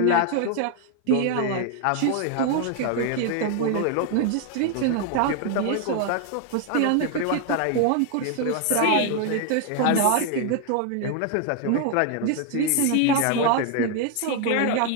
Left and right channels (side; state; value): both; different; correlation 0.00